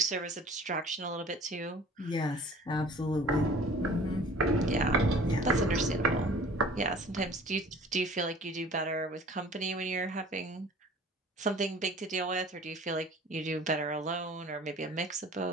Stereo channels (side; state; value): both; normal; correlation 0.47